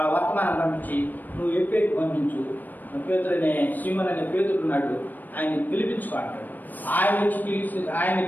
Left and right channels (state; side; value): late; right; 0.088 ms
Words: వర్తమానం పంపించి నువ్వు ఎప్పేకి పంపించు, పేతురు అనే సీమన్ అనే పేతుడు ఉన్నాడు, ఆయన పిలిపించుకో అంటాడు. ఆయన